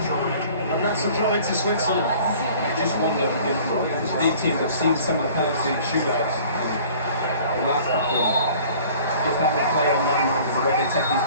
And that's a throw into Switzerland. I just wonder if these teams have seen some of the penalty shootouts and the last couple. If that would play on landmines and the way they take these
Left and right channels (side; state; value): both; inverted; correlation -0.49